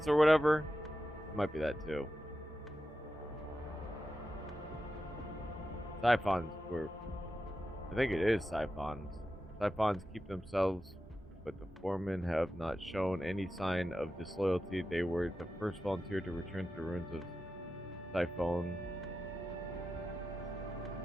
or whatever? Might be that too. Siphons were... I think it is Siphons. Siphons keep themselves, but the foremen have not shown any sign of disloyalty. They were the first volunteer to return to the ruins of Siphon.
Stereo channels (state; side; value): normal; both; correlation 0.91